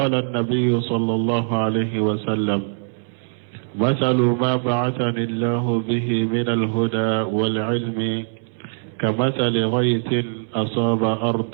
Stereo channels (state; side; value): silent; left; 64 dB below the other